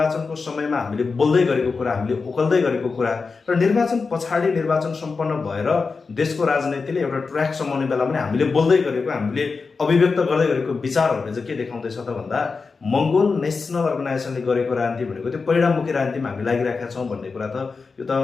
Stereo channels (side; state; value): right; quieter; 4.6 dB